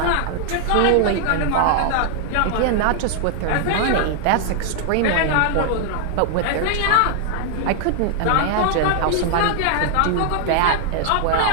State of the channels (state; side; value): different; both; correlation 0.00